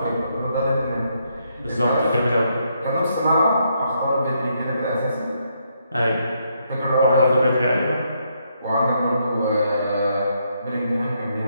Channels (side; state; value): both; inverted; correlation -0.76